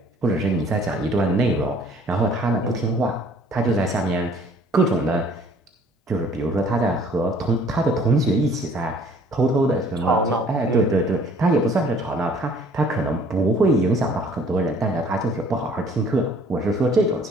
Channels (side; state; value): both; normal; correlation 0.56